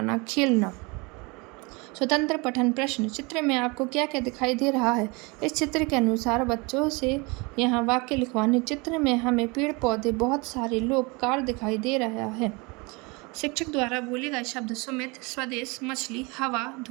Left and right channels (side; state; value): left; quieter; 27.7 dB